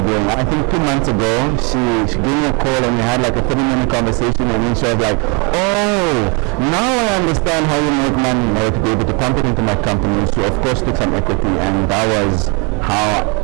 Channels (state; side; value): quieter; left; 32.1 dB